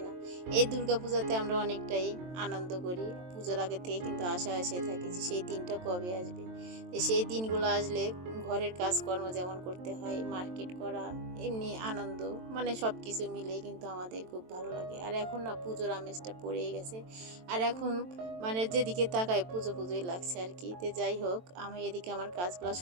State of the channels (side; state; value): left; late; 23 ms